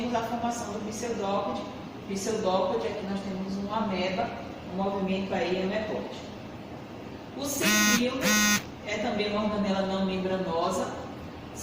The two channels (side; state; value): both; identical; correlation 1.00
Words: a formação do pseudópode. Pseudópode, aqui nós temos uma ameba, um movimento aí amebóide.